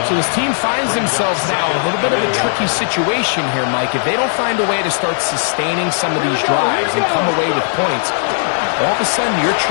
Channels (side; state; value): right; silent; digital silence